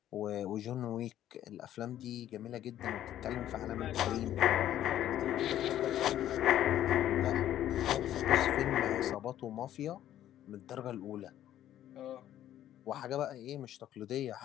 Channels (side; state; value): right; quieter; 12.0 dB